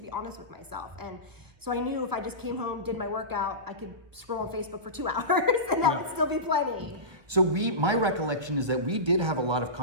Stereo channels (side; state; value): left; late; 1.4 ms